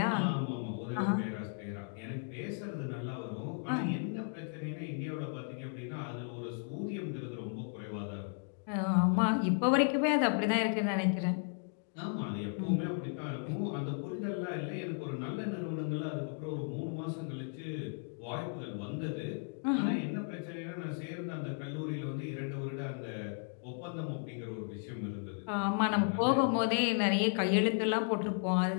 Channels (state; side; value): silent; right; 54 dB below the other